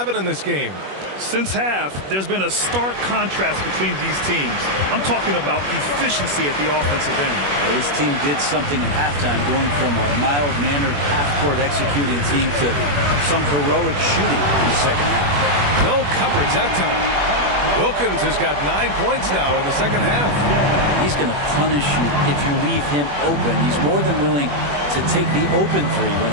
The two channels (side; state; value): left; late; 21 ms